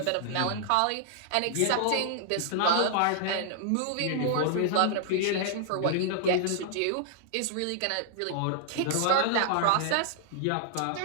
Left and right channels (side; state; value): both; different; correlation -0.01